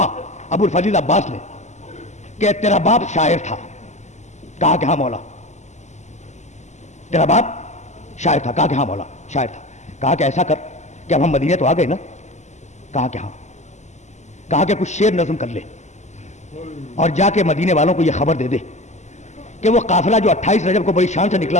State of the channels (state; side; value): late; right; 0.33 ms